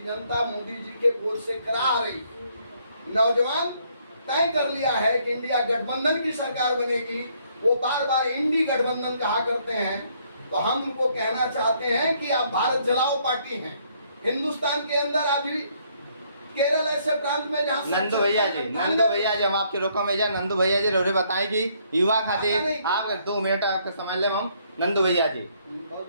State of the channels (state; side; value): inverted; both; correlation -0.68